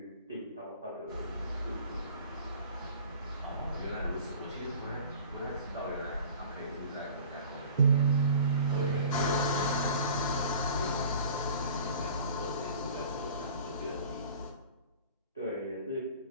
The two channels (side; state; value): both; inverted; correlation -0.44